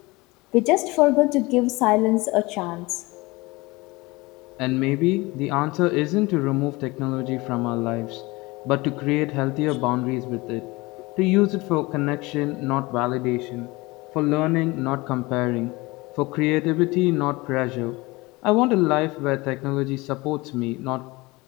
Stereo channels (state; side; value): quieter; right; 22.7 dB